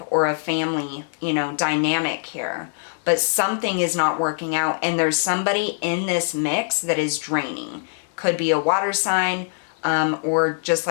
or a family, you know, dynamic here. But something is not working out, and there's somebody in this mix that is draining. Could be a water sign, or just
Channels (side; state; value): right; silent; 64 dB below the other